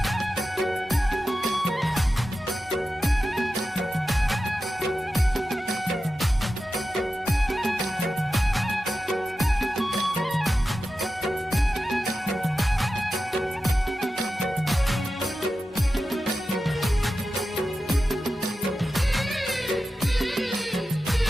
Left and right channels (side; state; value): both; normal; correlation 0.92